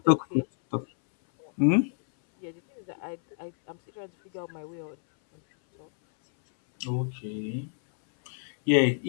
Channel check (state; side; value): silent; right; 59 dB below the other